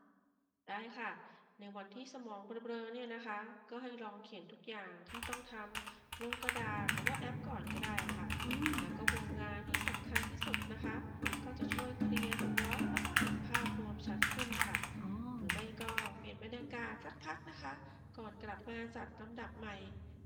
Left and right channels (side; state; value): both; identical; correlation 1.00